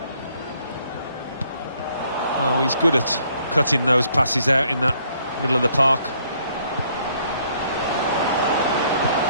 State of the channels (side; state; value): both; inverted; correlation -0.66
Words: Oh, he's good at cutting those passes out in that middle of the park.